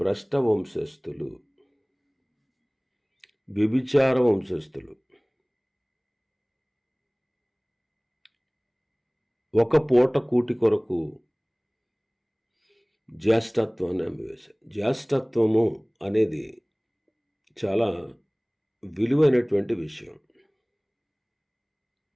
భ్రష్ట వంశస్థులు, వ్యభిచార వంశస్థులు. ఒక పూట కూటి కొరకు జ్యేష్ఠత్వాన్ని అమ్మివేశారు. జ్యేష్ఠత్వము అనేది చాలా విలువైనటువంటి విషయం.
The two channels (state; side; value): identical; both; correlation 1.00